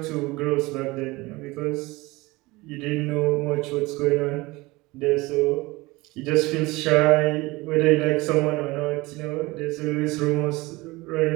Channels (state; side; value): quieter; left; 21.9 dB